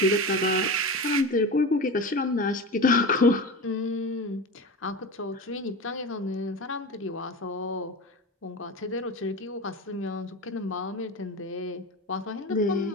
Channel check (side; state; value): both; normal; correlation 0.27